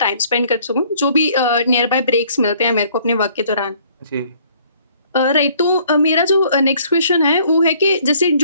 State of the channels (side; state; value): both; inverted; correlation -0.59